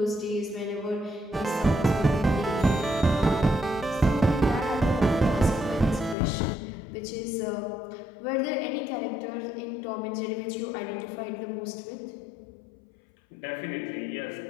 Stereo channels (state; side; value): drops out; right; at 6.2 s